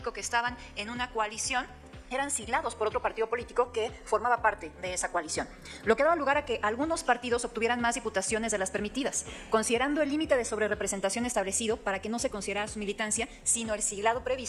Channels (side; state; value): both; identical; correlation 1.00